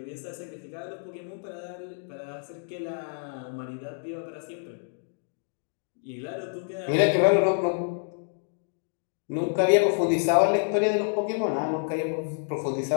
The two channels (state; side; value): silent; right; 59 dB below the other